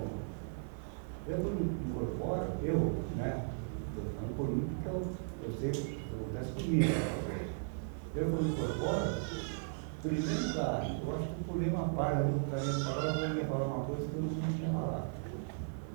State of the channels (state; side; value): silent; left; 54 dB below the other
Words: quando incorporo, estou falando por mim porque eu sei o que acontece comigo, com os outros. Eu, quando incorporo, em primeiro lugar, eu acho que eu pulei uma página no caminho, porque agora eu ia falar uma coisa que eu não tinha falado.